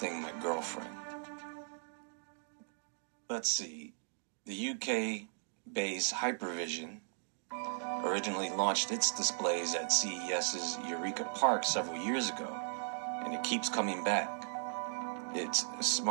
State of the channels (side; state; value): left; silent; digital silence